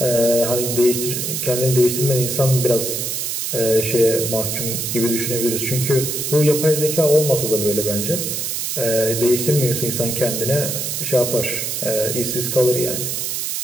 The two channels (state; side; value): noise; right; hiss, 2 dB below the sound